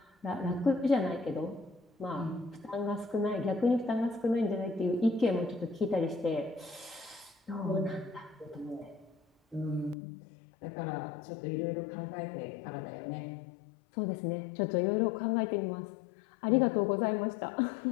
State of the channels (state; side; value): drops out; right; at 10.0 s